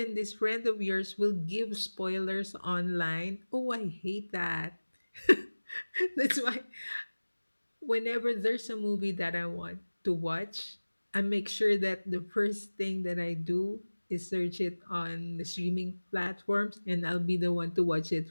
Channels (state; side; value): inverted; both; correlation -1.00